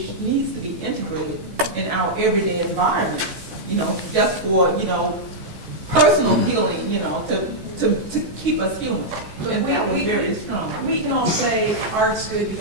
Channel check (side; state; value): left; late; 14 ms